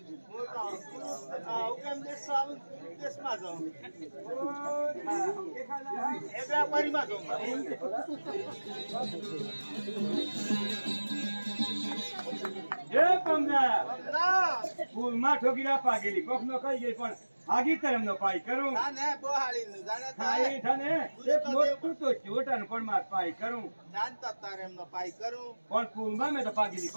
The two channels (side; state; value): both; inverted; correlation -1.00